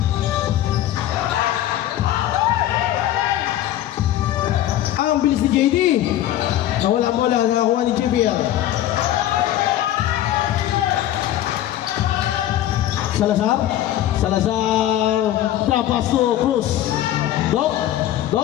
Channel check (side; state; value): right; quieter; 12.8 dB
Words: Ang bilis ni JD. Nawala bola, nakakuha ni JBL. Salazar drop pass to Cruz. Doc